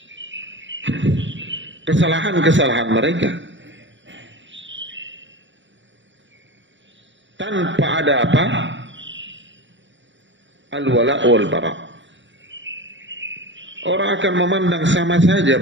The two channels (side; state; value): left; late; 0.54 ms